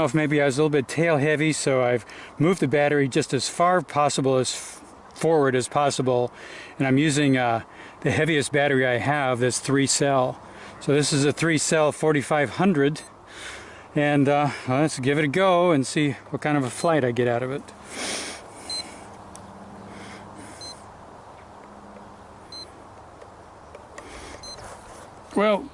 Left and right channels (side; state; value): both; identical; correlation 1.00